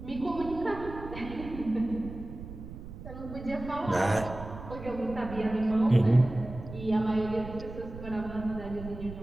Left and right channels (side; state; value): right; noise; rumble, 12 dB below the sound